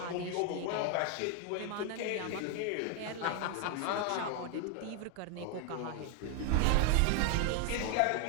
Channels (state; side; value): different; both; correlation 0.01